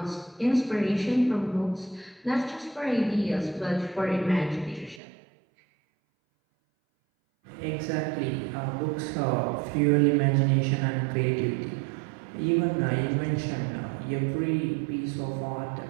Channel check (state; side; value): drops out; left; at 5.0 s